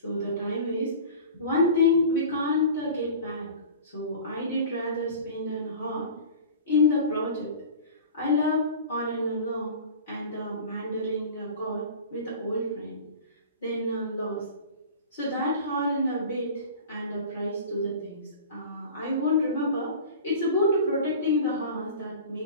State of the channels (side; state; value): both; inverted; correlation -0.38